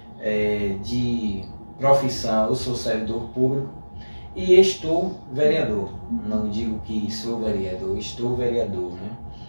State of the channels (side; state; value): both; inverted; correlation -1.00